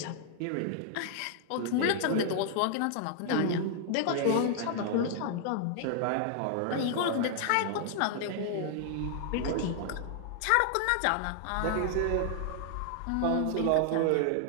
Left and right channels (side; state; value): both; different; correlation 0.00